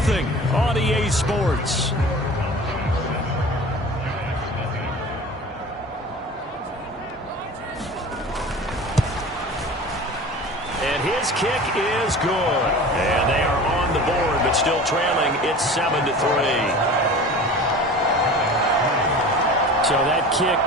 on EA Sports. His kick is good. And they are on the board, but still trailing. It's 7-3. So that kick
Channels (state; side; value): normal; both; correlation 0.38